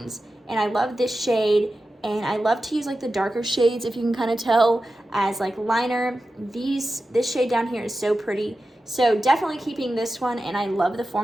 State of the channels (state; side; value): normal; both; correlation 0.93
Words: And I love this shade, and I love to use like the darker shades, if you can kind of tell, as like liner. This shade down here is so pretty. So definitely keeping this one, and I love the